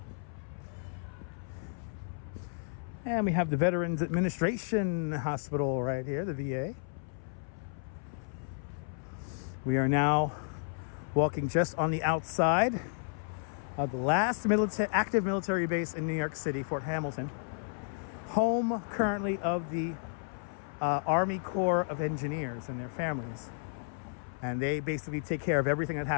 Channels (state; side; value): silent; right; 56 dB below the other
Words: And we have the Veterans Administration Hospital right here, the VA. We are now walking just on the outside of the last active military base in New York City, Fort Hamilton. Home currently of the Army Corps of Engineers and their families. And they basically take care of everything that